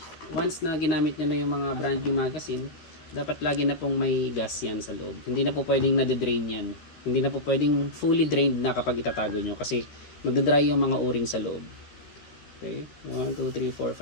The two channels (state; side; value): late; right; 13 ms